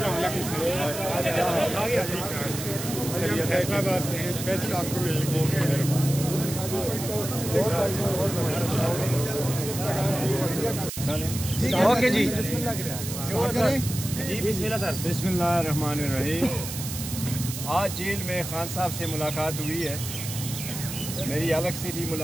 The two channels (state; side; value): noise; right; hiss, 7 dB below the sound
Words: فیصلہ سے اسپیشل آپ کو مل گئے. اوکے جی بسم اللہ الرحمن الرحیم. آج جیل میں خان صاحب سے ملاقات ہوئی ہے. میری الگ سے بھی